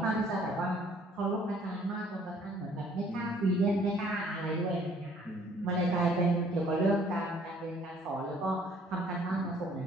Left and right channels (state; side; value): normal; both; correlation 0.59